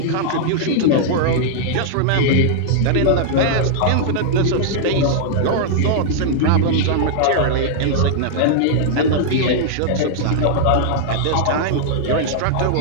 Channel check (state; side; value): different; both; correlation -0.01